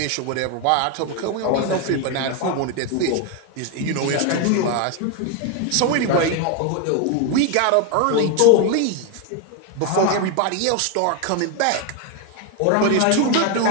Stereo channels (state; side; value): different; both; correlation 0.01